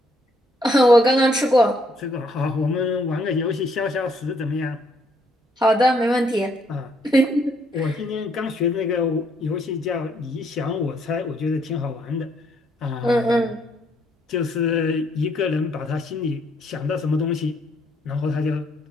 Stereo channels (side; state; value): both; normal; correlation 0.70